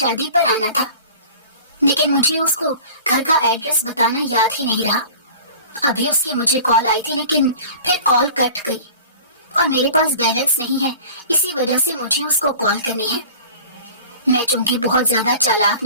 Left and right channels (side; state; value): both; inverted; correlation -0.42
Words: پر آنا تھا، لیکن مجھے اس کو گھر کا ایڈریس بتانا یاد ہی نہیں رہا۔ ابھی اس کی مجھے کال آئی تھی لیکن پھر کال کٹ گئی، اور میرے پاس بیلنس نہیں ہے، اسی وجہ سے مجھے اس کو کال کرنی ہے۔ میں چونکہ بہت زیادہ چالاک